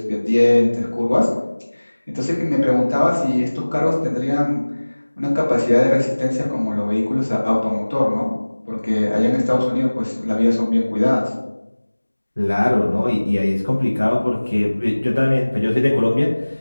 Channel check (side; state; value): both; inverted; correlation -1.00